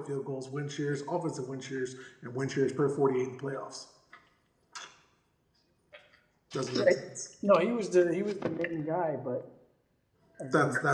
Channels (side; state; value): both; identical; correlation 1.00